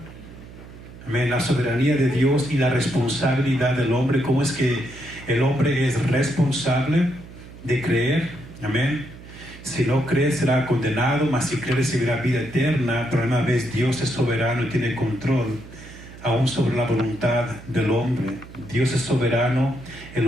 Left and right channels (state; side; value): noise; right; hum, 17 dB below the sound